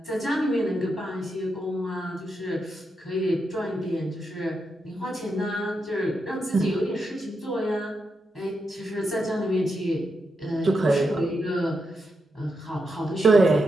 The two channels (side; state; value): both; normal; correlation 0.85